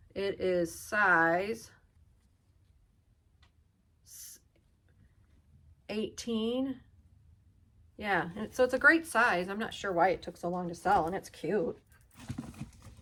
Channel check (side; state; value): both; identical; correlation 1.00